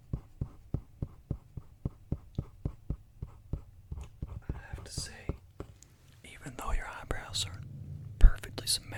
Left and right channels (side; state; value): both; identical; correlation 1.00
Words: I have to say, even though your eyebrows are perfectly